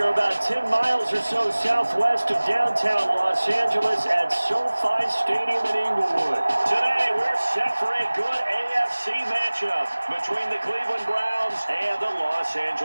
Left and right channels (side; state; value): both; inverted; correlation -1.00